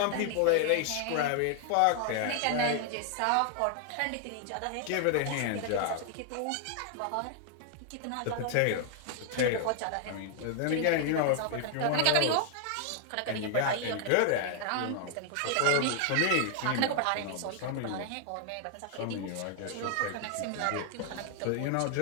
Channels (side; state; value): both; different; correlation 0.00